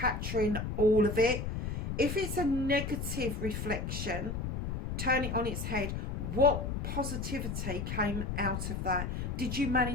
all of it. If it's a negative reflection, turn it on its head. What positivity came out of that? Did you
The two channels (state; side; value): noise; left; rumble, 3 dB below the sound